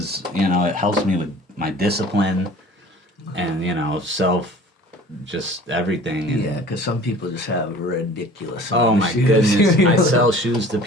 it helps me with my discipline and, just everything. And, Yeah, because some people just have ridiculous. oh amount of my shoes. goodness. I sell shoes to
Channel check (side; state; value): both; normal; correlation 0.46